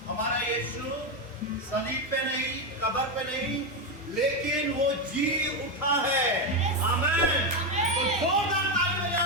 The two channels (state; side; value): normal; both; correlation 0.09